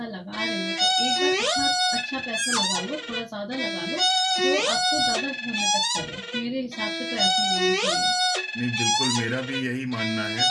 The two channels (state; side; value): identical; both; correlation 1.00